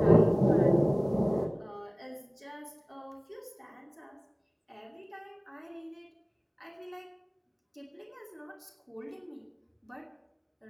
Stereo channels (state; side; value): identical; both; correlation 1.00